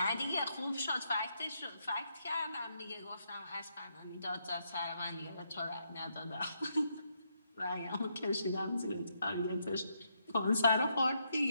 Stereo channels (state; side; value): inverted; both; correlation -0.78